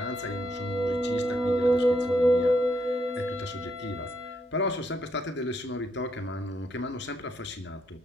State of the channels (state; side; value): normal; both; correlation 0.76